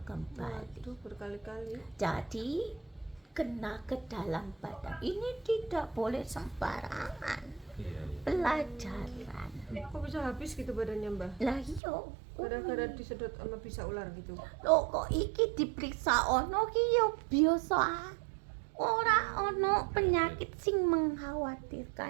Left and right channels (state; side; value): drops out; left; at 11.8 s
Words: kembali. Waduh, berkali-kali. Jadi kena ke dalam badan ini tidak boleh sembarangan. Iya, iya. Pelajaran. Kok bisa habis gitu badannya Mbah? Lah iyo. Gara-gara disedot sama bisa ular gitu. Lho kok iki diperiksa ono ki yo biasa. Ora ono penyakit sing